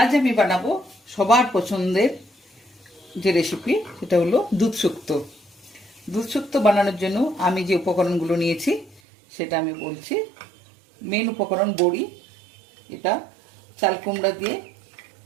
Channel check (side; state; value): left; drops out; at 9.0 s